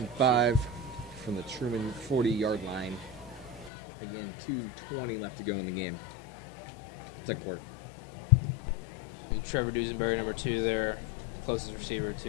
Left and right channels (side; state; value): right; drops out; at 3.7 s